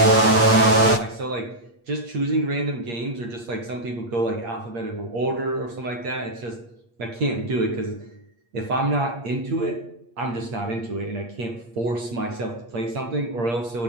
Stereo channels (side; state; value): left; late; 8.5 ms